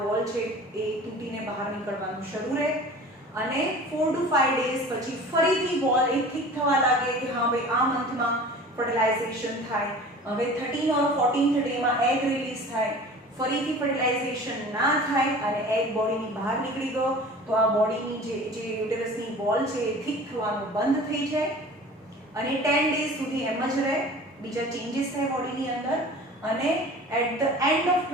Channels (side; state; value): both; normal; correlation 0.41